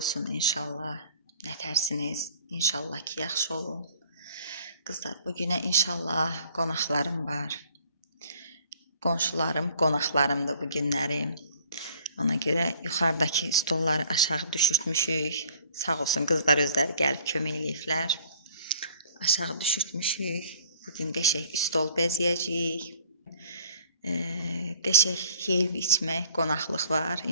inşallah. Nətərsiniz? İnşallah ki, yaxşı olun. Qızlar, bu günə inşallah qonaqlarım var. Qonşularım, qonaqlarımdır bu günlərim. Ona görə yuxarıdakı stolları aşağı düşürtmüşük. Sağ olsun qızlar özləri gəlib kömək eləyiblər. Aşağı düşürtmüşük. Bugün qəşəng stol bəzəyəcəyik. Qəşəng yeyib içmək, qonaqlıq var.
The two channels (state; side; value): inverted; both; correlation -0.54